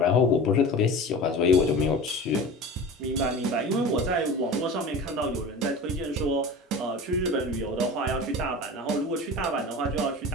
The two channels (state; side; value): normal; both; correlation 0.34